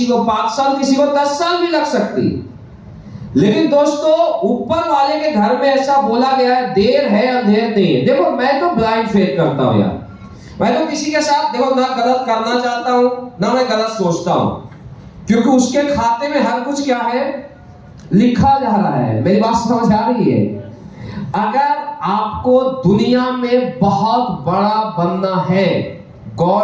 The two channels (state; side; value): identical; both; correlation 1.00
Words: को 5 साल, किसी को 10 साल भी लग सकती है। लेकिन दोस्तों, ऊपर वाले के घर में ऐसा बोला गया है, देर है अंधेर नहीं है। देखो, मैं तो ब्लाइंड फेथ करता हूं यार, मैं तो किसी के साथ देखो ना गलत करना चाहता हूं ना मैं गलत सोचता हूं, क्योंकि उसके खाते में हर कुछ क्या है? लिखा जा रहा है। मेरी बात समझ आ रही है? अगर आपको दुनिया में बहुत बड़ा बनना है,